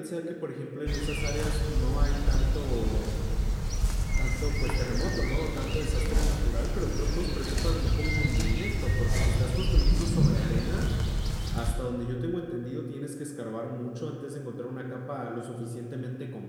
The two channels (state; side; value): identical; both; correlation 1.00